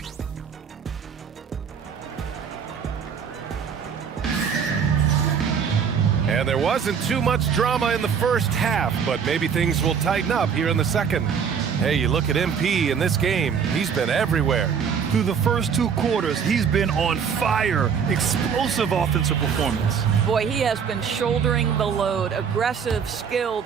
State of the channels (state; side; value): quieter; left; 6.9 dB